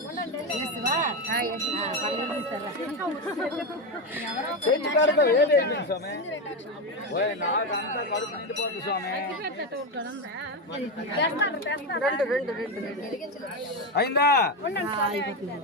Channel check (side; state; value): both; normal; correlation 0.12